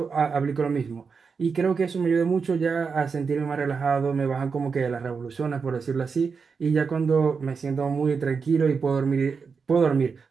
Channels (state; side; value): quieter; left; 5.4 dB